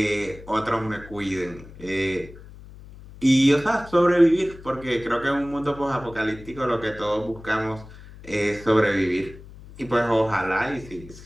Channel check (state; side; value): noise; left; hum, 18 dB below the sound